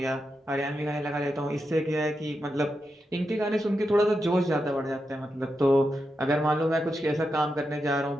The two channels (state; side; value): normal; both; correlation 0.87